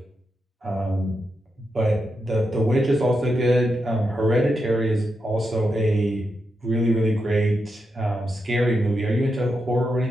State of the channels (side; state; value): both; normal; correlation 0.86